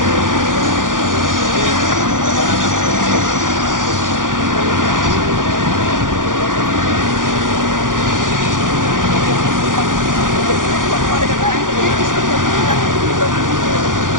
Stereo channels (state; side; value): late; left; 0.89 ms